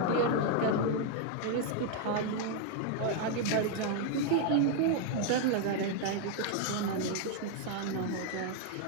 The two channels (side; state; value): both; different; correlation 0.00